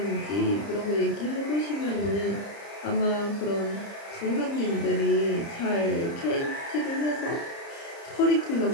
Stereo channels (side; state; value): right; late; 30 ms